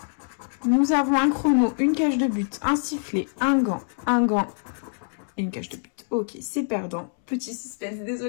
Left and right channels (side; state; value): right; silent; 62 dB below the other